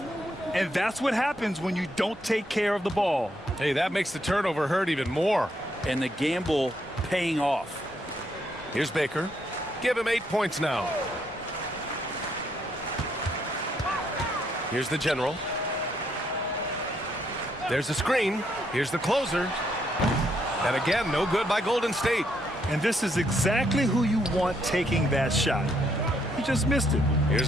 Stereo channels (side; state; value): both; normal; correlation 0.74